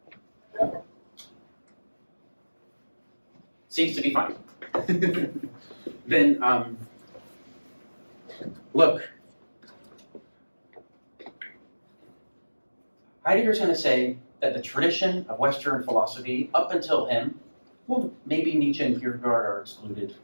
Seems to be fine. Then, look. Heidegger's going to say that the tradition of Western philosophy, up until him, well, maybe Nietzsche and Kierkegaard are excluded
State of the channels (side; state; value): both; inverted; correlation -1.00